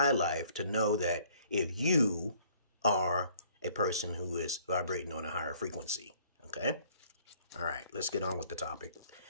life to know that if you are a person who is vibrating on a higher frequency, okay? All right, let's get on with the topic.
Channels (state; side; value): inverted; both; correlation -0.59